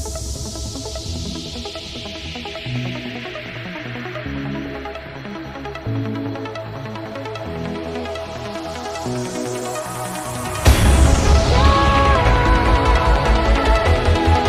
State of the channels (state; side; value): identical; both; correlation 1.00